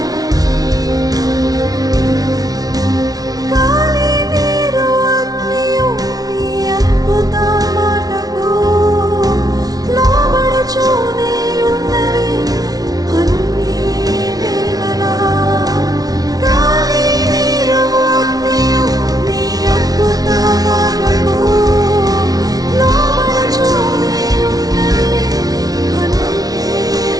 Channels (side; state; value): left; late; 0.18 ms